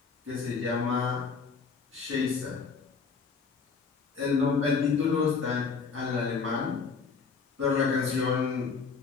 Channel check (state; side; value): quieter; right; 5.2 dB